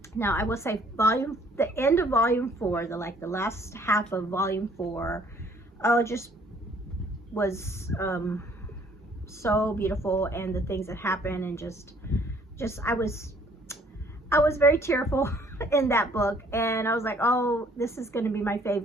Now, I will say the end of volume 4, the last half of volume 4, oh, it just was so beautiful, and the things that happened, and just I was very tearful in that book, and I was like, oh, this is going to be my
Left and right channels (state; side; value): normal; both; correlation 0.60